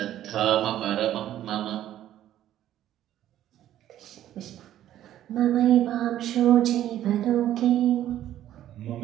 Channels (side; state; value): left; quieter; 12.3 dB